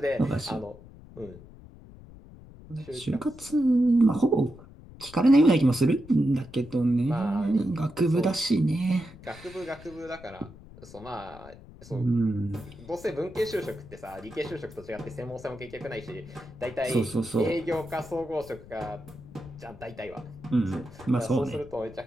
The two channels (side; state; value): left; noise; rumble, 19 dB below the sound